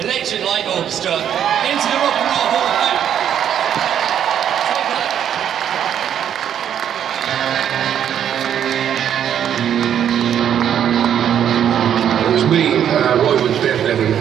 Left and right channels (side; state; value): left; quieter; 9.4 dB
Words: Electric Light Orchestra, into the Rock and Roll Hall of Fame. It was me, Roy Wood, Bev